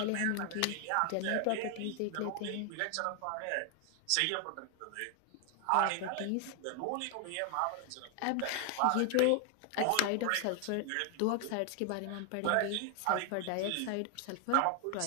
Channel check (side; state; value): both; different; correlation 0.00